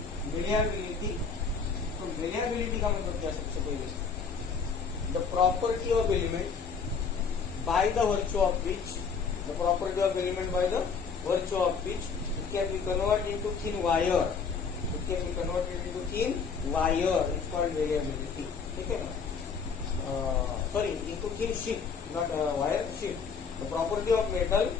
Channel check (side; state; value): right; quieter; 5.6 dB